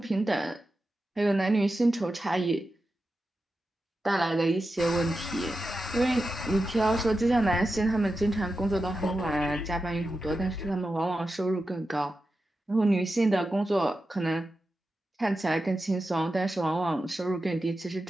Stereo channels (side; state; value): both; normal; correlation 0.91